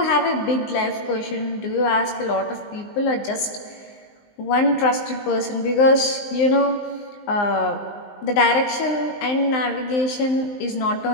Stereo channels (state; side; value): late; right; 19 ms